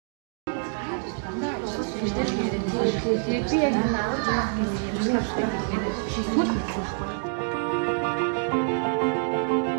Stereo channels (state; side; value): silent; left; 59 dB below the other